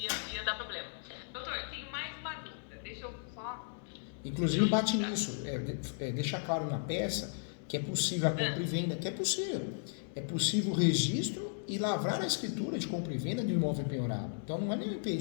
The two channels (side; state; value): right; silent; digital silence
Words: ia dar problema. Doutor, eu tenho mais uma dúvida. Deixa eu só... Inclusive bate nisso, deixa claro na peça que é possível a compra e venda, que é possível. É possível o registro e lavrar a escritura de compra e venda de um imóvel penhorado. Então não é nenhum